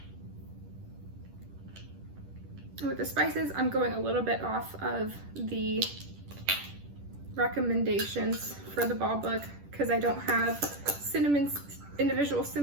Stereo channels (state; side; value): late; left; 10 ms